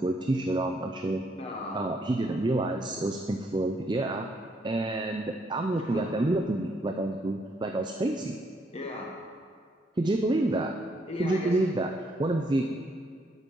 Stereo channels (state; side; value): normal; both; correlation 0.72